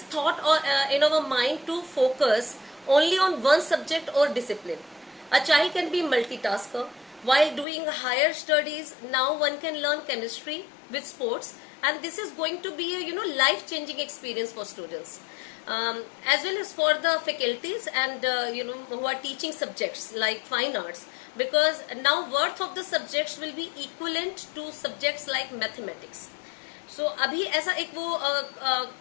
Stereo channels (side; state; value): right; drops out; at 7.7 s